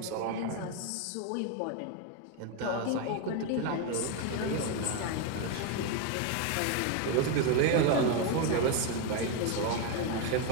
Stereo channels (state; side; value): different; both; correlation 0.02